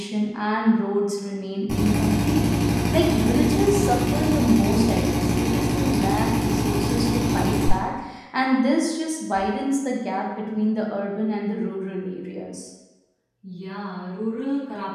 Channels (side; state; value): both; identical; correlation 1.00